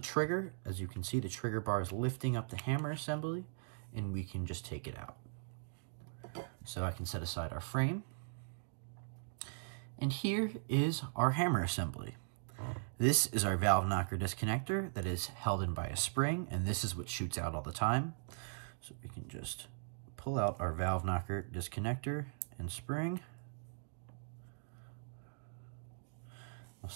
trigger. As you can see, the trigger bar is lifting up the hammer assembly, and we can just take it out. So I can set aside our frame. And here is our hammer assembly. This is our valve knocker disconnector that is held in by a spring, and this is what shoots out all the time. So we can just pull out our valve knocker disconnector and spring. We'll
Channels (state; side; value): silent; left; digital silence